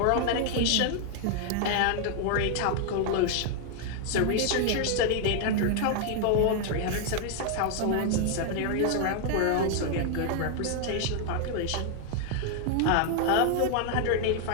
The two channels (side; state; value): both; different; correlation 0.00